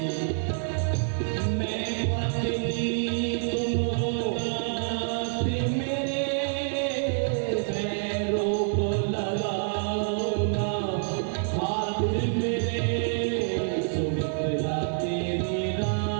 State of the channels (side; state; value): left; silent; 58 dB below the other